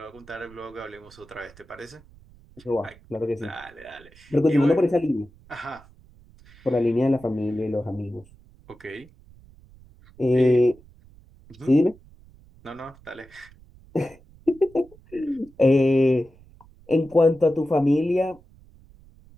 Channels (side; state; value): right; noise; rumble, 25 dB below the sound